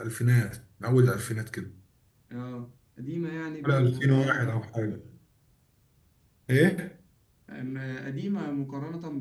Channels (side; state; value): both; identical; correlation 1.00